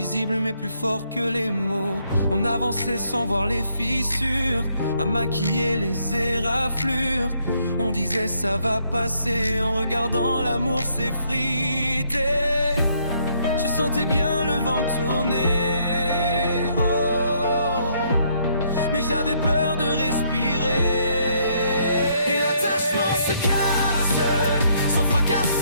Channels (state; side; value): inverted; both; correlation -0.70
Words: mais plus fort que les mots. On avançait sans voir les fissures, à maquiller les éraflures. On disait ça va passer, en regardant l'amour s'effriter. Je sentais bien le vent tourner, oh, mais j'avais peur de respirer. Et l'attachement se casse, sans fracas,